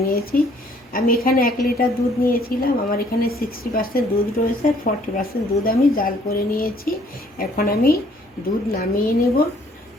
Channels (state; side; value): normal; both; correlation 0.61